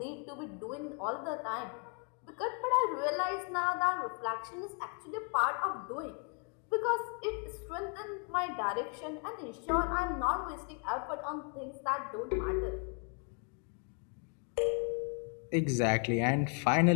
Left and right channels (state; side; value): quieter; right; 37.9 dB